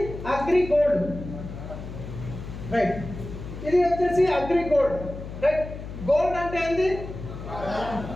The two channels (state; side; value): noise; left; hum, 10 dB below the sound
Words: అగ్రి గోల్డ్. రైట్. ఇది వచ్చేసి అగ్రి గోల్డ్. రైట్. గోల్డ్ అంటే ఏంది?